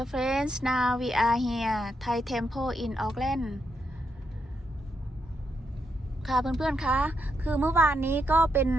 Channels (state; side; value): normal; both; correlation 0.81